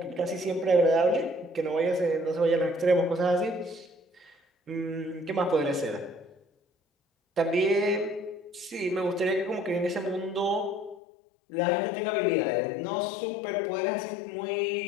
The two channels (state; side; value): drops out; right; at 11.0 s